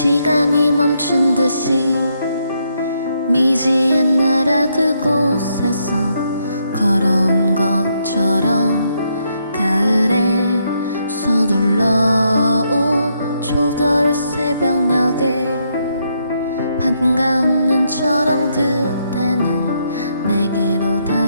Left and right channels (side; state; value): both; inverted; correlation -0.76